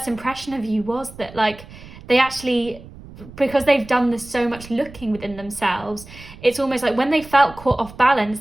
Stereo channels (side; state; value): right; noise; rumble, 18 dB below the sound